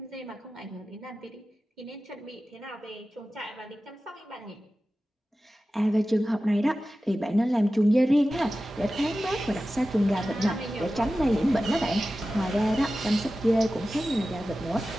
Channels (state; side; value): normal; both; correlation 0.95